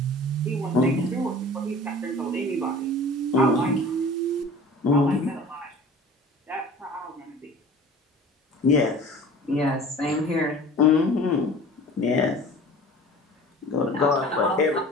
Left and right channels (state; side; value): normal; both; correlation 0.42